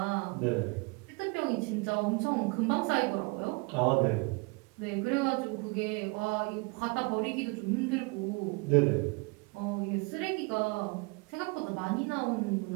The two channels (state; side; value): quieter; left; 29.6 dB